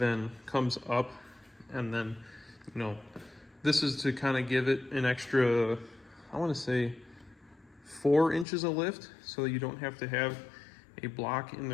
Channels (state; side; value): drops out; right; at 8.5 s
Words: comes up. And then, you know, this is to kind of give it an extra, I want to say 4 inches of lift, so you don't have to have a block in